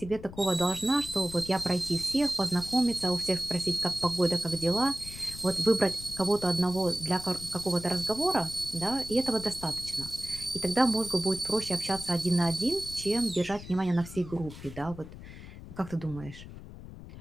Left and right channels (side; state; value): left; noise; rumble, 14 dB below the sound